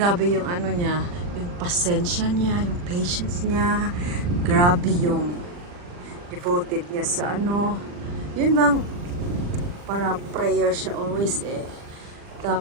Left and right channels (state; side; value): late; left; 40 ms